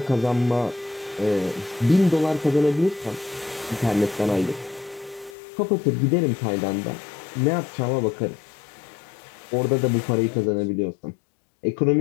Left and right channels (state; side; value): drops out; right; at 5.4 s